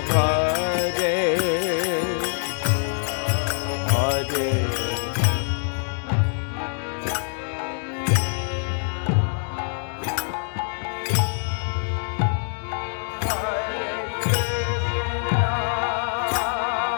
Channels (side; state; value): right; silent; digital silence